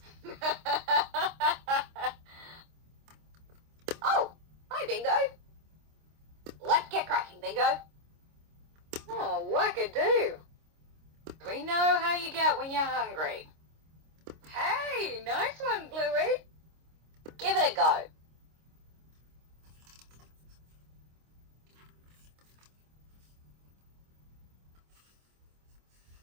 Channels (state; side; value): late; left; 26 ms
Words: Oh, hi, Bingo. Let's get cracking, Bingo. Oh, wackadoo. We know how you get when you're hungry. Hey, nice one, Bluey. Give it a go.